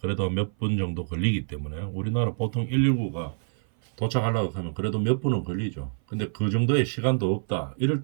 그래도 몇 분 정도 걸리기 때문에 우리나라 보통 119가 도착하려고 하면 그래도 몇 분은 걸리죠. 근데 그 정도의 시간도 없다. 이럴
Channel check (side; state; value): left; silent; 57 dB below the other